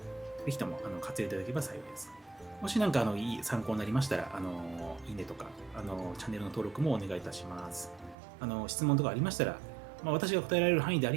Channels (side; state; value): left; drops out; at 8.2 s